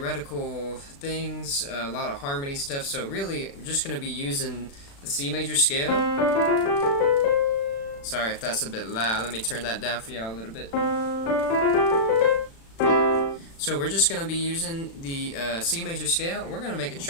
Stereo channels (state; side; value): late; right; 36 ms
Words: things, a lot of harmony stuff, so really we're just going to be using the C major scale. Sorry if that's a bit loud, let me turn that down for y'all a little bit. So we're just going to be using the C major scale, and we're going to make a